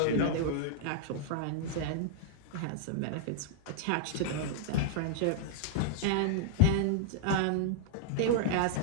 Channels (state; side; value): different; both; correlation -0.02